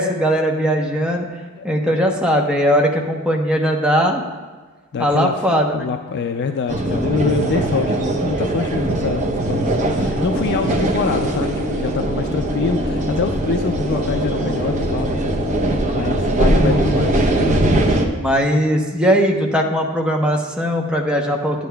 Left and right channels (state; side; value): normal; both; correlation 0.52